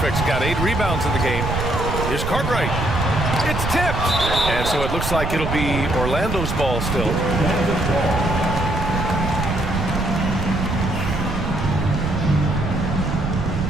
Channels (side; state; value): right; noise; rumble, 3 dB below the sound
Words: got 8 rebounds in the game. Here's Cartwright. It's tipped. And so it looks like it'll be Orlando's ball still.